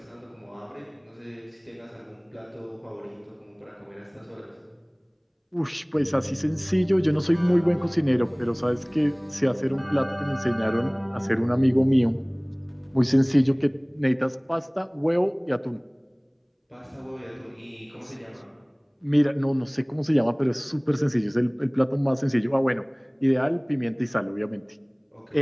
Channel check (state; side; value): identical; both; correlation 1.00